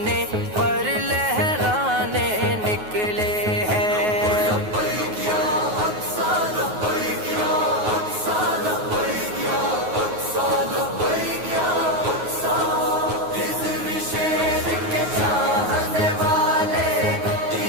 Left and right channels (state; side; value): late; left; 9.4 ms